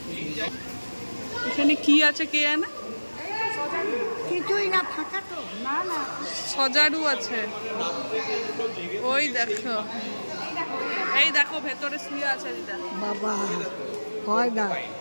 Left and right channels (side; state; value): both; inverted; correlation -1.00